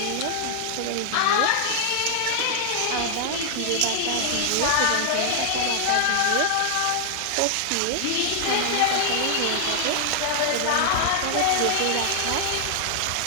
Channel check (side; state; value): both; different; correlation 0.00